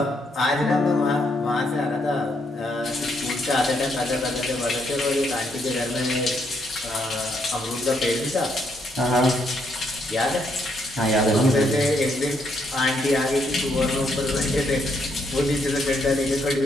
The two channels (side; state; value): both; normal; correlation 0.75